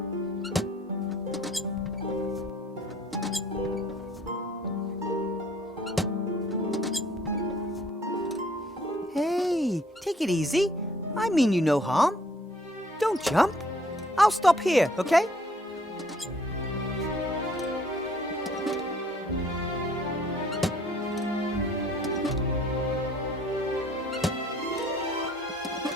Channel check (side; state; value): both; normal; correlation 0.60